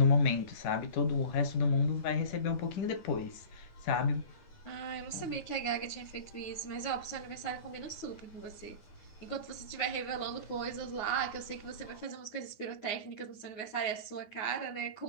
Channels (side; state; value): right; late; 9.7 ms